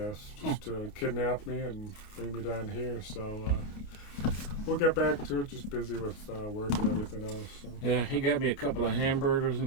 Just to kidnap me and bring me down here. So we'll get back to it. Just busy with work and everything else. So. Yeah, he got me a couple of hamburgers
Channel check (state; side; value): late; right; 29 ms